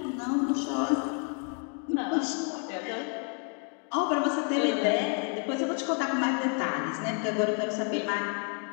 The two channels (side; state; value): right; quieter; 38.7 dB